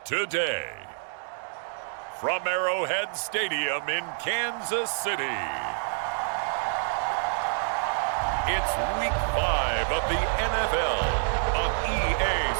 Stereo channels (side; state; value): left; silent; digital silence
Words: Today, from Arrowhead Stadium in Kansas City, it's Week 5 of the NFL on EA